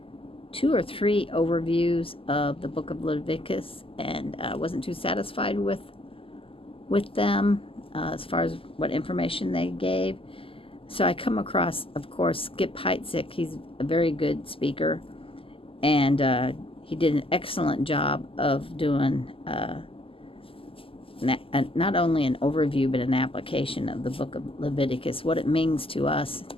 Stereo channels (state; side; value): late; right; 0.26 ms